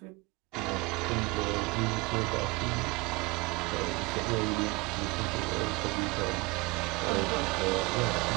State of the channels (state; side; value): quieter; left; 25.0 dB